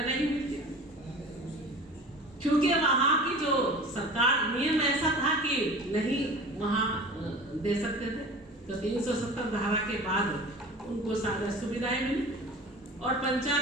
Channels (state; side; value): normal; both; correlation 0.39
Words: मिलती, क्योंकि वहां की जो सरकार नियम ऐसा था कि नहीं वहां दे सकते थे। तो 370 धारा के बाद उनको सारी सुविधाएं मिली। और